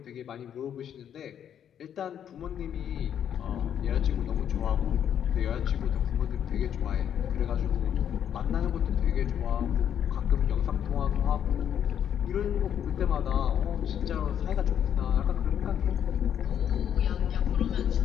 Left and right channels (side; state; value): right; quieter; 9.3 dB